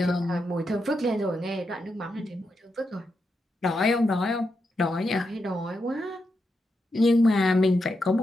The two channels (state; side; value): normal; both; correlation 0.85